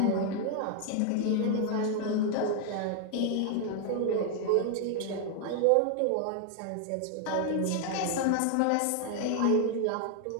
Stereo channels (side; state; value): both; different; correlation 0.00